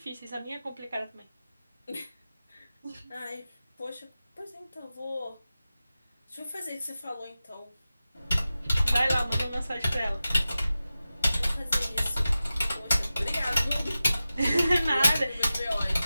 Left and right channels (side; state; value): both; inverted; correlation -0.94